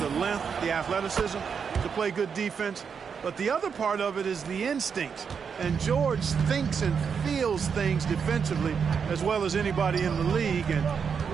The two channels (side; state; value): left; quieter; 6.5 dB